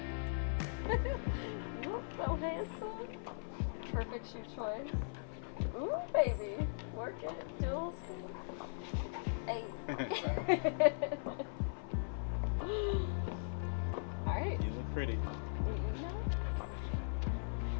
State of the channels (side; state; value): right; silent; 52 dB below the other